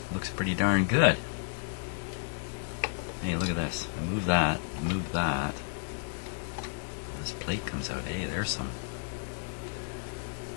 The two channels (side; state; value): right; silent; digital silence